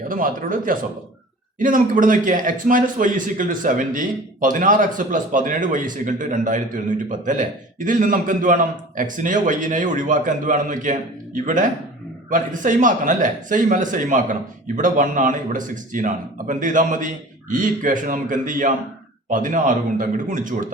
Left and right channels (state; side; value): normal; both; correlation 0.42